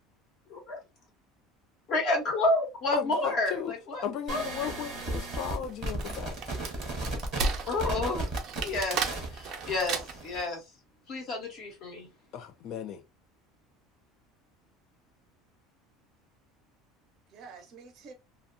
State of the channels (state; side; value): normal; both; correlation 0.40